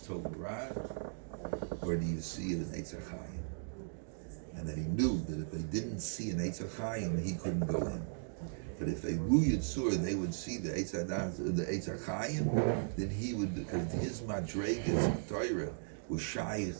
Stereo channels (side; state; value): left; silent; digital silence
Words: Tov Ra, or do you see an Eitz HaChaim? And that he knew that if they didn't see an Eitz HaChaim, he couldn't go in. But if they Ru Yitzur, they would see the Eitz Hadas, the Eitz HaChaim, then he would, because his Madregas Torah was shy